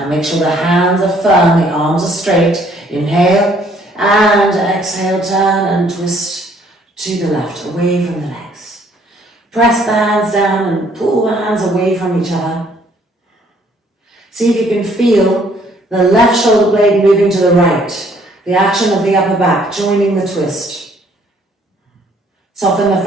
make sure the hands are firm, the arms are straight. Inhale. And exhale, turn and twist to the left, away from the legs. Press the hands down and pull the hands away from each other. See if you can feel the left shoulder blade moving to the right, the action of the upper back joining the twist. Soften the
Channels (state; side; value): normal; both; correlation 0.63